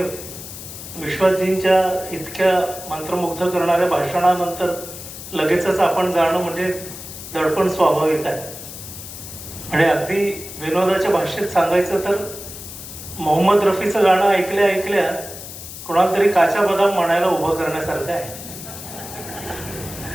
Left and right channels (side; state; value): left; noise; hiss, 12 dB below the sound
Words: विश्वासजींच्या इतक्या मंत्रमुग्ध करणाऱ्या भाषणानंतर लगेचच आपण जाणं म्हणजे दडपण स्वाभाविक आहे. म्हणजे अगदी विनोदाच्या भाषेत सांगायचं तर मोहम्मद रफीचं गाणं ऐकल्या ऐकल्या कोणाला तरी काचा बदाम म्हणायला उभं करण्यासारखं आहे.